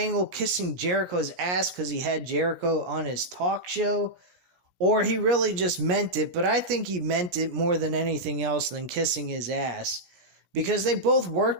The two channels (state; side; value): late; left; 17 ms